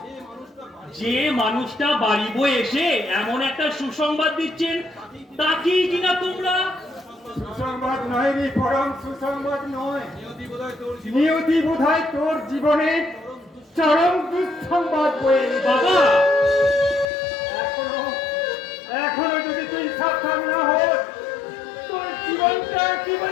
যে মানুষটা বাড়ি বয়ে এসে এমন একটা সুসংবাদ দিচ্ছেন, তাকেই কিনা তোমরা সুসংবাদ নয় রে, পরম সুসংবাদ নয়। নিয়তি বোধহয় তোর জীবনে চরম দুঃসংবাদ বয়ে এনেছে। বাবা এখনো যদি তুই সাবধান না হোস, তোর জীবনটা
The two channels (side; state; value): right; drops out; at 17.1 s